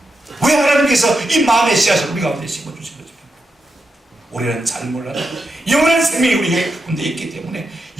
왜 하나님께서 이 마음의 씨앗을 우리 가운데 심어주신 거죠? 우리는 잘 몰라도 영원한 생명이 우리 가운데 있기 때문에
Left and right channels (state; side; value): normal; both; correlation 0.86